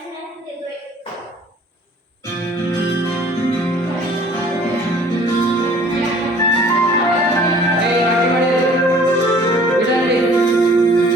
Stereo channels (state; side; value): normal; both; correlation 0.52